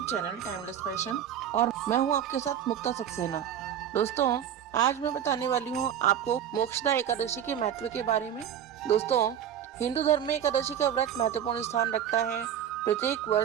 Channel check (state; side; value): quieter; left; 9.7 dB